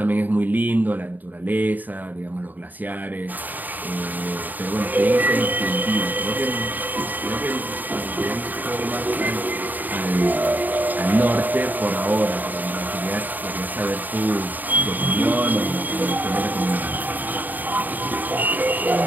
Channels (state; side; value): late; left; 0.086 ms